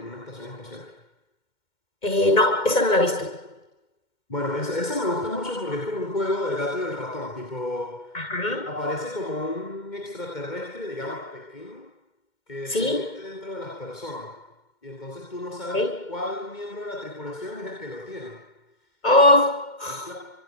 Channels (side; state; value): right; late; 2.1 ms